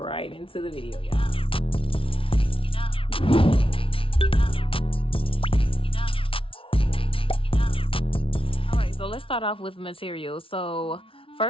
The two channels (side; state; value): right; late; 0.26 ms